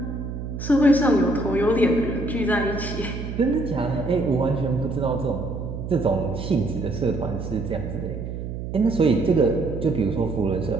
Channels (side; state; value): right; noise; hum, 7 dB below the sound